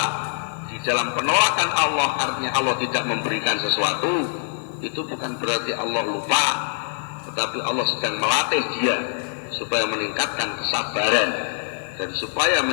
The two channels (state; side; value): silent; right; digital silence